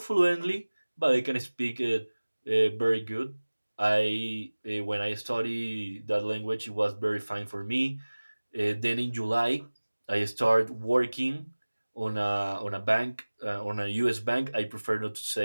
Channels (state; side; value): inverted; both; correlation -1.00